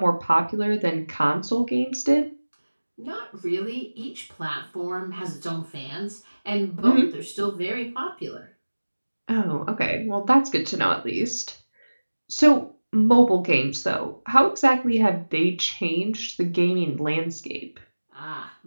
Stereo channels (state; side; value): inverted; both; correlation -1.00